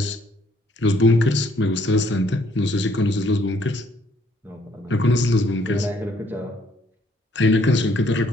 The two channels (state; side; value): normal; both; correlation 0.65